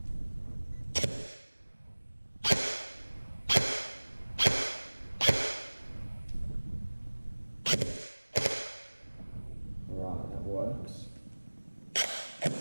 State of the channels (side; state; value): both; inverted; correlation -1.00